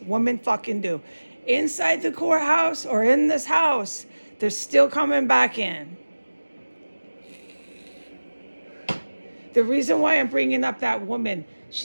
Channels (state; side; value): inverted; both; correlation -1.00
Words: woman fucking do. Inside the courthouse or in this house, they're still coming back in. The reason why I'm bringing up that woman,